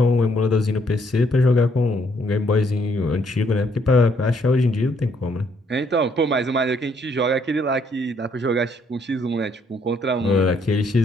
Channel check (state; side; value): normal; both; correlation 0.69